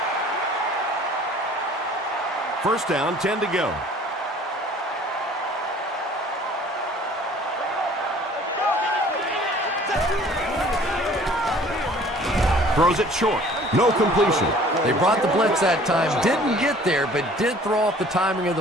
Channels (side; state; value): both; normal; correlation 0.52